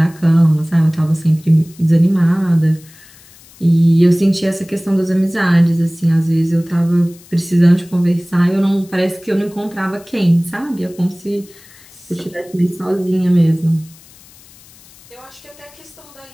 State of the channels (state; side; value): noise; left; hiss, 25 dB below the sound